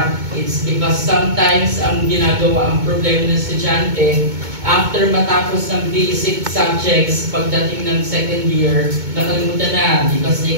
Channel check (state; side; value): late; left; 2.2 ms